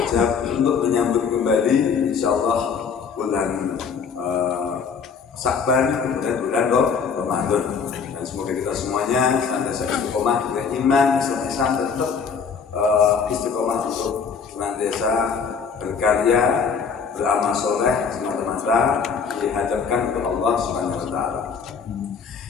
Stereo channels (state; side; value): quieter; right; 6.0 dB